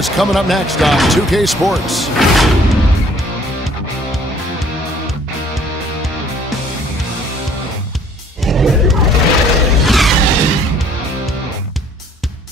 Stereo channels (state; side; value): normal; both; correlation 0.57